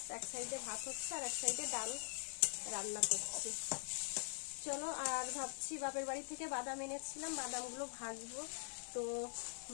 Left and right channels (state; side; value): silent; right; digital silence